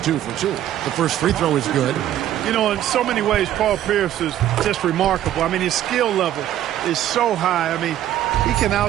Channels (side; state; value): left; quieter; 12.1 dB